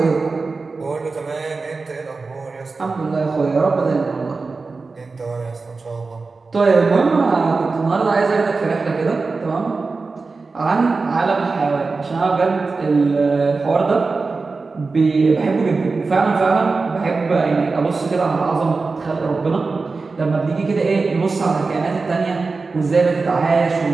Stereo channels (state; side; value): quieter; left; 4.1 dB